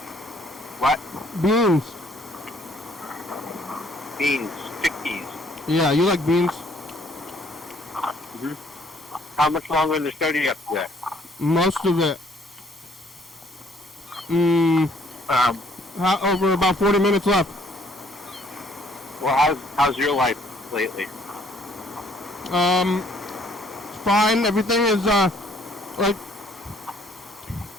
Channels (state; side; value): normal; both; correlation 0.62